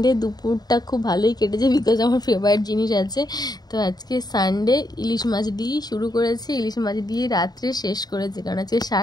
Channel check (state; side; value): late; right; 0.19 ms